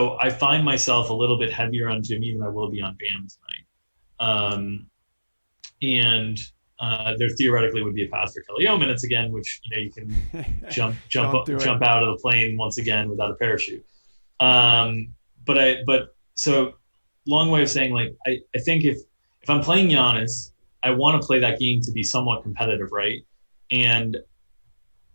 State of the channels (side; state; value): both; inverted; correlation -1.00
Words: I find myself a little bit heavier on Jimmy than I will be on Bam tonight. There theoretically would be a pass for Kelly O minutes again, which you can jump out of the plane once again without a parachute. So long way of saying, like, I think if I'm playing Giannis, I want to play that game to be somewhat competitive, right? And